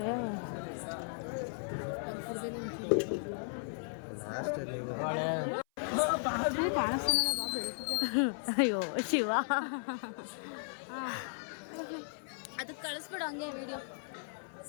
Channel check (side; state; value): right; silent; 54 dB below the other